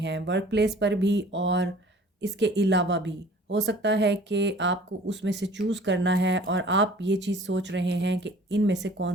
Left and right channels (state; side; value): normal; both; correlation 0.49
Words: वर्क प्लेस पर भी और इसके अलावा भी। हो सकता है कि आपको उसमें से चूज़ करना है और आप ये चीज़ सोच रहे हैं कि इनमें से कौन